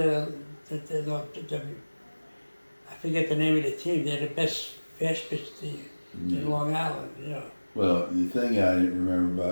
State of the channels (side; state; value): both; inverted; correlation -1.00